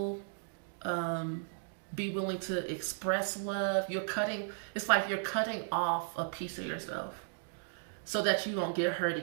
be willing to express love, it's like you're cutting off a piece of yourself so that you don't get hurt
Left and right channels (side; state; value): left; silent; digital silence